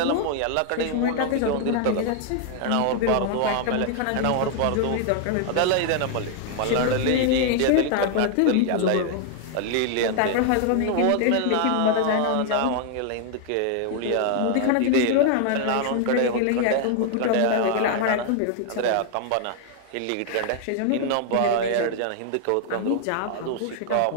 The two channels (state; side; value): different; both; correlation 0.00